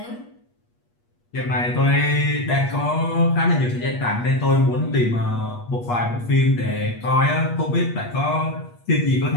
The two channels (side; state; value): right; late; 8.4 ms